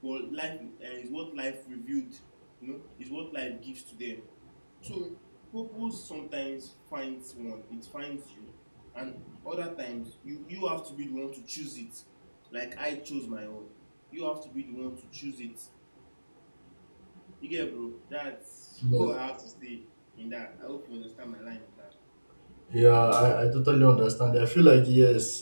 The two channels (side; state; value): both; inverted; correlation -1.00